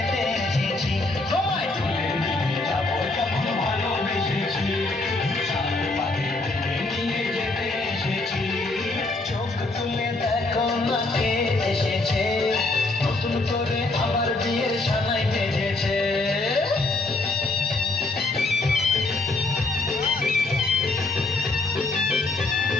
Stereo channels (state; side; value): quieter; right; 3.2 dB